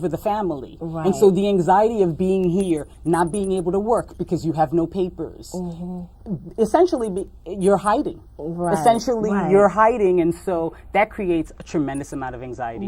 the family? Right. And so the anxiety of being here, not being able to work because you have no papers, essentially you're hiding. Right, Essentially right. you're hiding, and so that creates a tremendous amount of anxiety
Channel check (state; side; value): identical; both; correlation 1.00